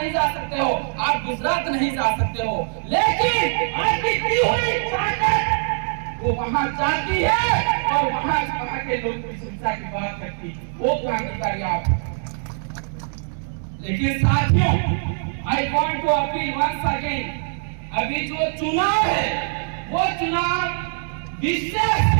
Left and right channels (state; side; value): silent; left; 64 dB below the other